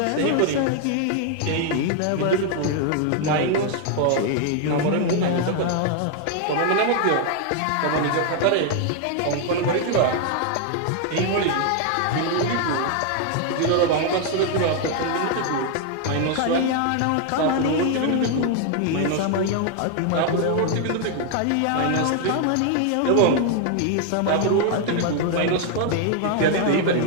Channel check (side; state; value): both; different; correlation 0.00